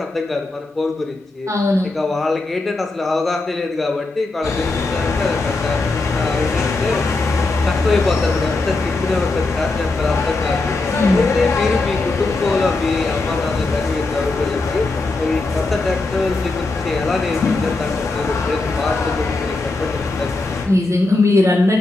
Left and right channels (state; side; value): quieter; right; 3.3 dB